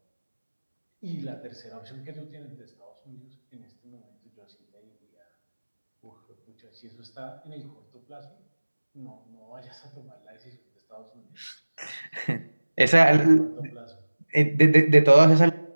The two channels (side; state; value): both; inverted; correlation -1.00